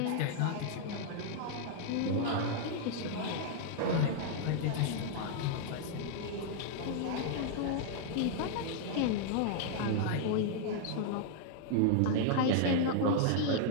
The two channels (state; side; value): different; both; correlation -0.01